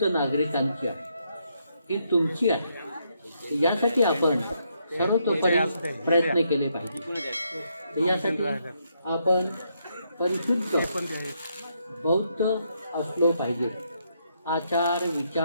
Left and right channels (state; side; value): inverted; both; correlation -0.77